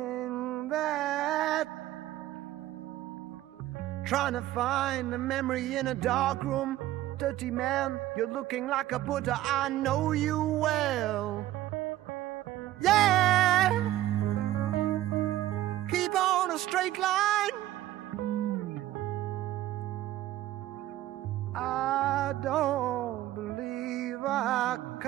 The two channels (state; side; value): quieter; left; 14.6 dB